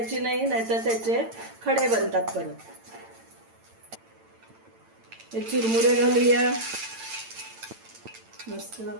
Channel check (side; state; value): left; late; 8.9 ms